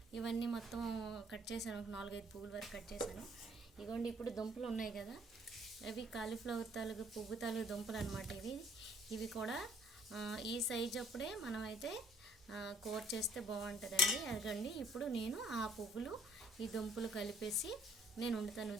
ఇవన్నీ మొత్తం కట్ చేశాను, ఒక 4-5 పువ్వుల వరకు కట్ చేశాను. ఇగోండి, ఇప్పుడు దుంపలు ఉన్నాయి కదా, అవి కాలీఫ్లవర్ తాలూకు పువ్వు తాలూకు దుంపలు అనమాట. ఇవి కూడా ఈ సైజ్ అప్పుడే మనం అయితే కూర చేస్తే బాగుంటుందండి. అదిగండి, ఇప్పుడు నేను ఆ పువ్వులు ఈ దుంపలు కలిపేసి నేను వండుతాను.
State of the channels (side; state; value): both; normal; correlation 0.60